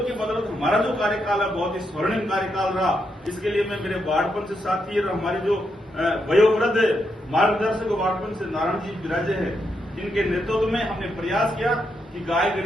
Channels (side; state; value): both; normal; correlation 0.81